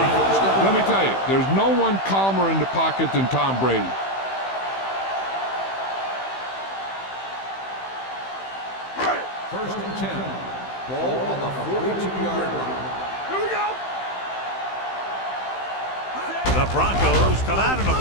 Let me tell you, there's no one calmer in the pocket than Tom Brady. First and 10. Ball on the 42-yard line. Here we go. The Broncos come out in a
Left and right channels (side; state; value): right; late; 15 ms